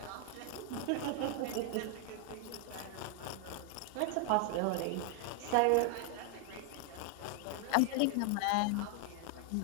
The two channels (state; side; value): different; both; correlation 0.00